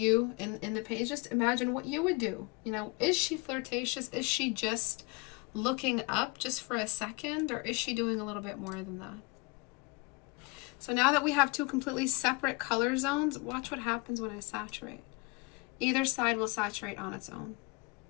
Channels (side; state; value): right; quieter; 28.3 dB